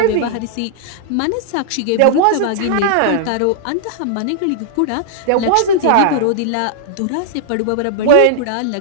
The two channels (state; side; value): different; both; correlation -0.01